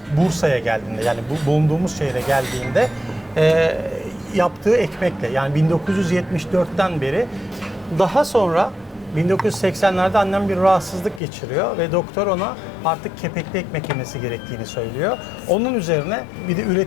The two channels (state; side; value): drops out; right; at 11.2 s